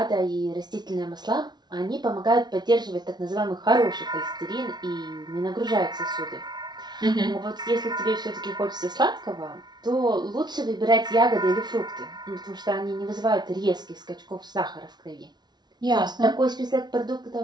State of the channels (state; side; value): late; left; 0.20 ms